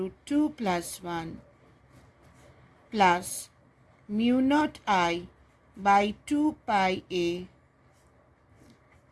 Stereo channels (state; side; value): identical; both; correlation 1.00